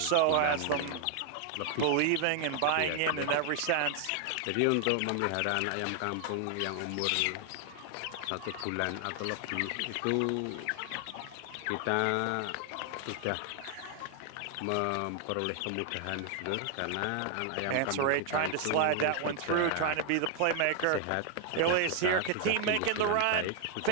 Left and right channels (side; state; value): both; different; correlation 0.00